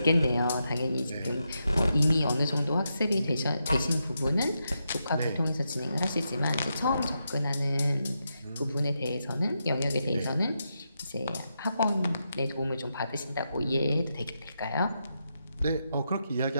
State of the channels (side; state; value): both; inverted; correlation -0.85